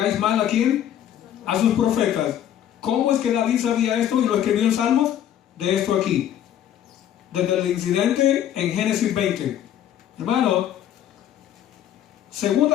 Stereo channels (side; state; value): right; quieter; 10.7 dB